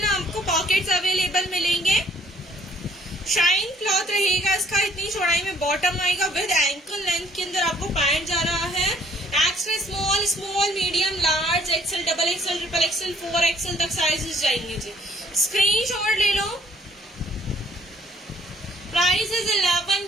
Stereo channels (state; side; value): normal; both; correlation 0.62